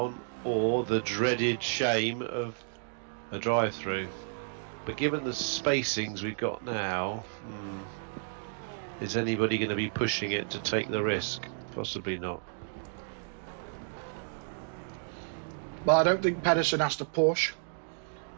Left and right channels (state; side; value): silent; left; digital silence